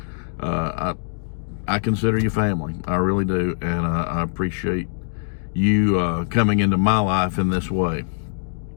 I consider you family. I really do. And I appreciate you coming into my life in this way.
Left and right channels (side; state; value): right; silent; digital silence